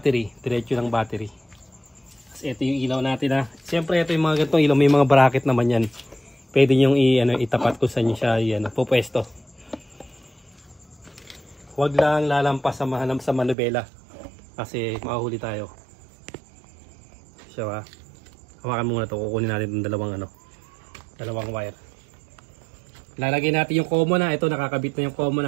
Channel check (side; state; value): left; drops out; at 13.6 s